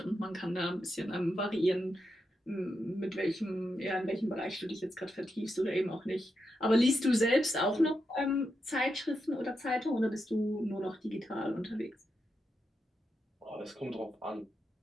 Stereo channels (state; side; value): normal; both; correlation 0.85